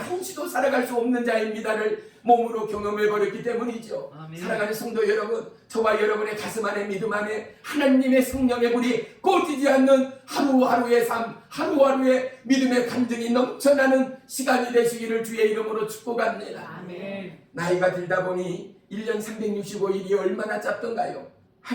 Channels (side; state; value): both; identical; correlation 1.00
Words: 살아갈 수 없는 자입니다를 몸으로 경험해버렸기 때문이죠. 아멘. 사랑하는 성도 여러분, 저와 여러분의 가슴 안에 믿음 안에 하나님의 성령의 불이 꺼지지 않는 하루하루의 삶, 하루하루의 믿음의 간증이 넘쳐나는 시간이 되시기를 주의 이름으로 축복합니다. 아멘. 나이가 들다 보니 1년 365일이 얼마나 짧던가요?